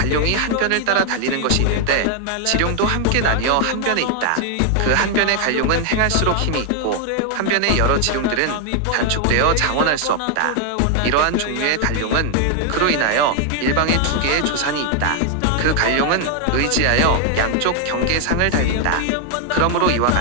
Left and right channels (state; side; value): different; both; correlation 0.00